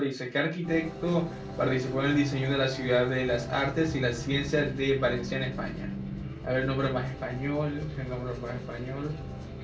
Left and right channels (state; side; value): identical; both; correlation 1.00